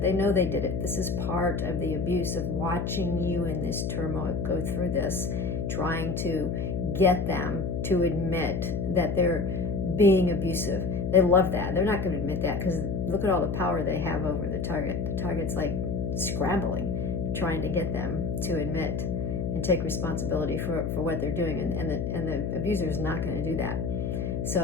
know they did it. This is part of the abuse of watching you in this turmoil go through this, trying to get them to admit that they're being abusive. They love that. They're not going to admit that because look at all the power they have over the target. The target's like scrambling, trying to get them to admit and take responsibility for what they're doing. And the abuser is not going to do that.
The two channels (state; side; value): noise; left; hum, 1 dB below the sound